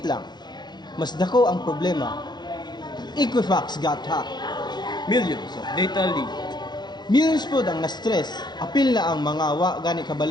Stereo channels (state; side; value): late; right; 0.20 ms